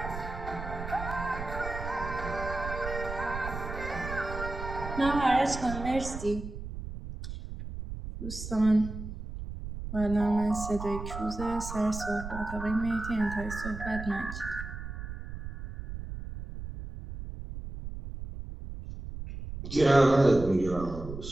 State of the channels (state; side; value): noise; right; rumble, 8 dB below the sound